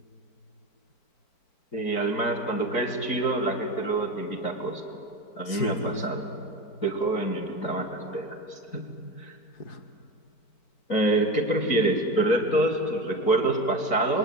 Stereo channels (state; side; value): late; right; 4.7 ms